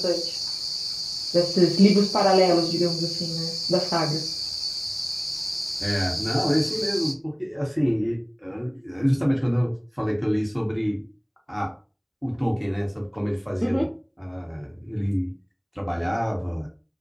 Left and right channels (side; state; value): both; identical; correlation 1.00